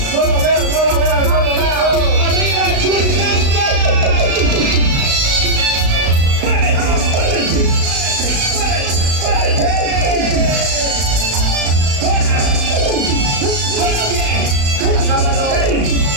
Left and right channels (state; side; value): late; left; 35 ms